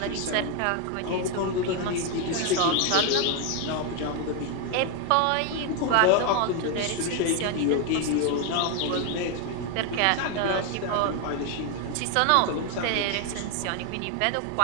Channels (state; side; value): different; both; correlation 0.01